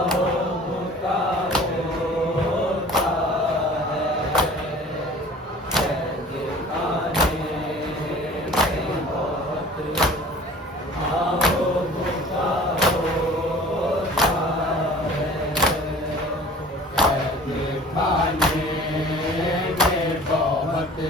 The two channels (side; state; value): both; normal; correlation 0.46